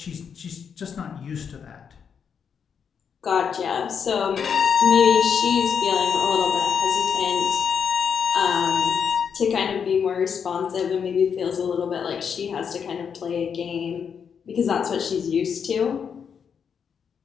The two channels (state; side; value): quieter; right; 7.0 dB